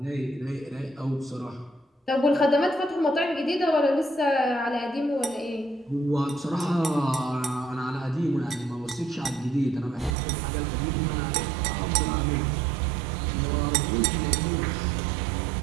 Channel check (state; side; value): drops out; left; at 10.2 s